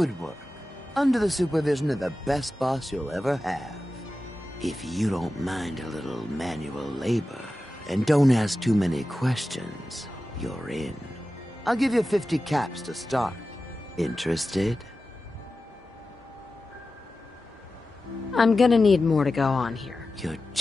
work. Under the supervision of the best boss you'll ever have. If you don't mind a little manual labor, and don't ask too many questions, you're in. I'll give you 50 caps to start. Interested? I'm gonna need more to go on here. You're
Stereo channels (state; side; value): normal; both; correlation 0.94